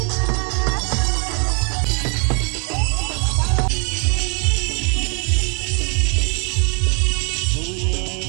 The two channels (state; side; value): quieter; left; 36.8 dB